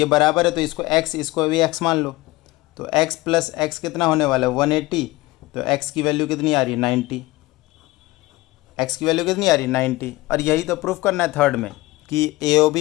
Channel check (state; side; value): quieter; right; 20.2 dB